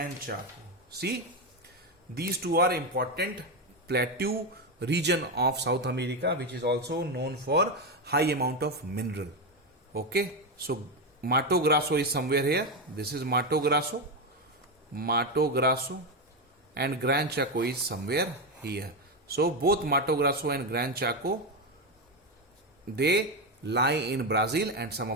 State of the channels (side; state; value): both; normal; correlation 0.10